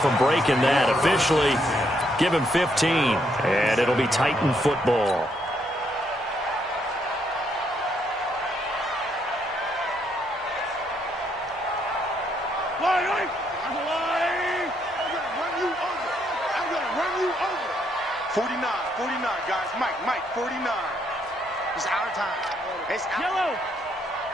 breaking that. Officially, give him 15, and it'll be Titan football. I'm gonna run you over. 49, guys. Mike, 49. It's our time. It's our Yellow.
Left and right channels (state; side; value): normal; both; correlation 0.73